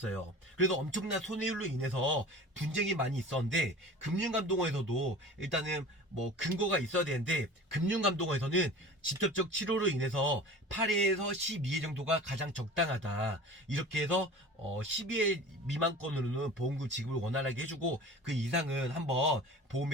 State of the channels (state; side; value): normal; both; correlation 0.39